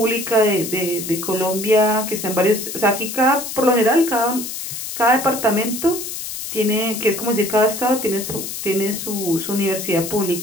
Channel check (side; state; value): left; noise; hiss, 7 dB below the sound